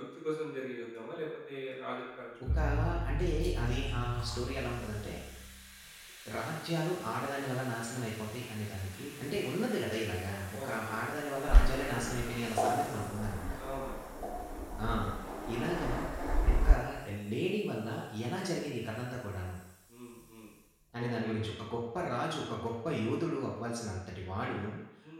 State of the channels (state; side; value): identical; both; correlation 1.00